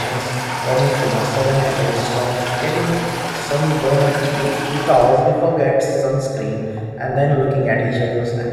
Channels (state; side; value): identical; both; correlation 1.00